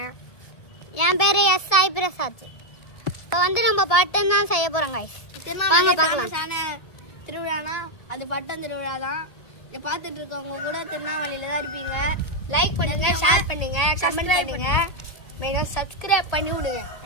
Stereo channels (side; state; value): right; late; 1.7 ms